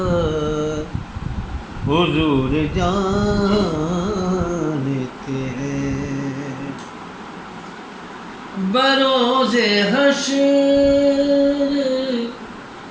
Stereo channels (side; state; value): both; identical; correlation 1.00